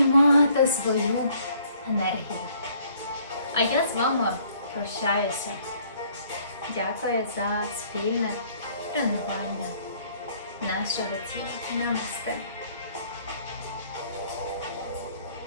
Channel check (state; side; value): inverted; both; correlation -0.61